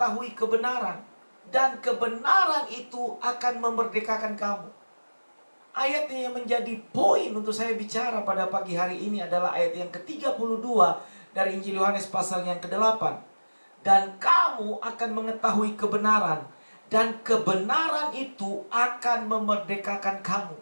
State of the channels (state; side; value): inverted; both; correlation -1.00